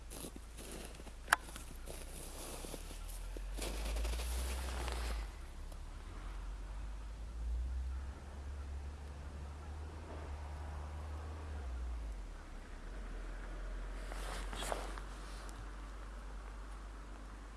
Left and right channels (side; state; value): both; identical; correlation 1.00